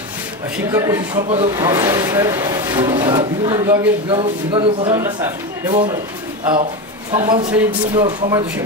শিক্ষা পরিষদ সম্পাদক স্যার, বিভিন্ন বিভাগের বিভাগীয় প্রধান এবং সম্মান শ্রেণীর বিভিন্ন সম্মানিত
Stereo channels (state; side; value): normal; both; correlation 0.18